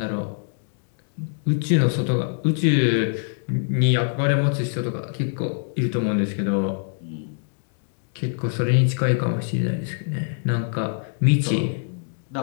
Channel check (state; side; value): silent; right; digital silence